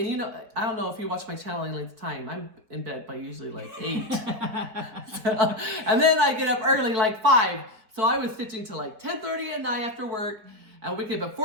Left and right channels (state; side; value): late; left; 4.6 ms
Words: and I don't know if you watch my channel any length of time. I'm in bed by usually like 8. And then I get up early, like 5. So I was stitching till like 10:30 at night after work. And we get up at